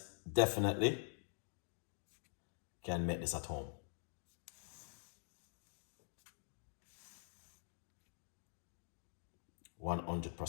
definitely can make this at home.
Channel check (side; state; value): right; silent; digital silence